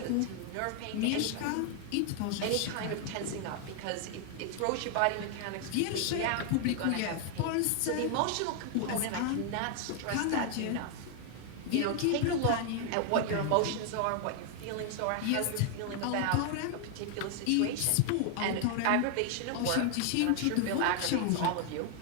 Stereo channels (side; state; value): both; different; correlation 0.00